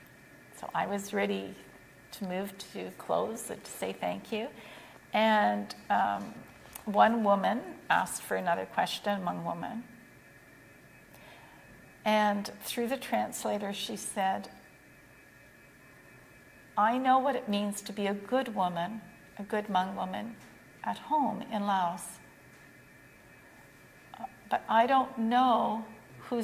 so I was ready to move to close and to say thank you. And one woman asked for another question among women. And through the translator, she said, I know what it means to be a good woman, a good Hmong woman, at home in Laos. But I don't know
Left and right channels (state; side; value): identical; both; correlation 1.00